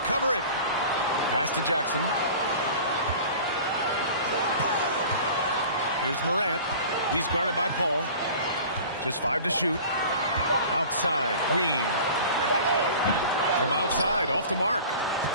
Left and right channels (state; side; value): inverted; both; correlation -0.41